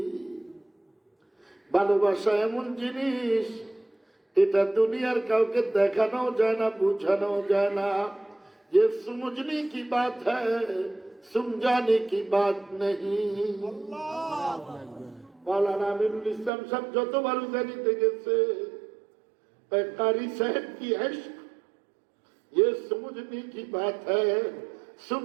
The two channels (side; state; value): left; drops out; at 16.5 s